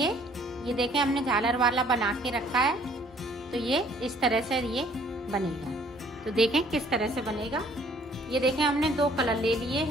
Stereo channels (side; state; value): both; normal; correlation 0.59